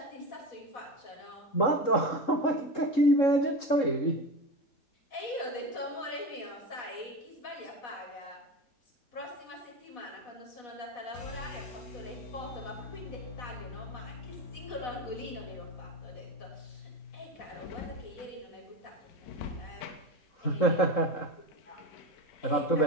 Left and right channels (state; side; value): late; right; 3.7 ms